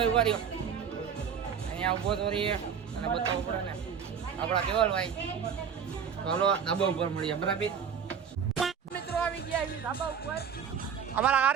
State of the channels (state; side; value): quieter; left; 7.3 dB